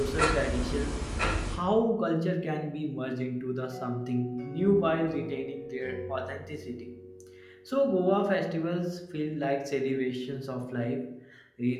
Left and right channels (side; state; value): both; identical; correlation 1.00